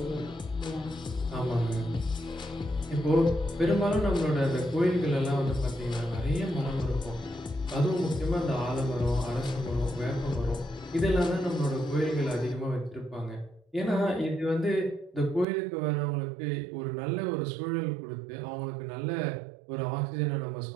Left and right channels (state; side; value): drops out; left; at 15.5 s